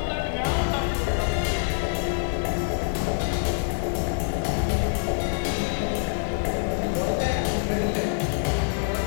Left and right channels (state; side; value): silent; right; digital silence